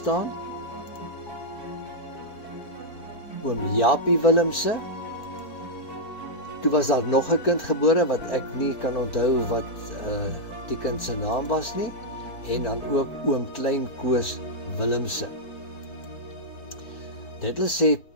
oom Japie Willemse. Toe was daar nog 'n kind gebore wat ek nie kan onthou wat die kind se naam was nie, en dan ook oom Klein Koos Willemse. Dit wil sê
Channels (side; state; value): right; late; 4.6 ms